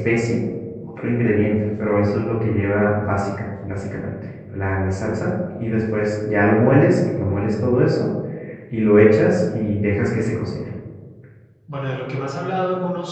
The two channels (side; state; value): both; identical; correlation 1.00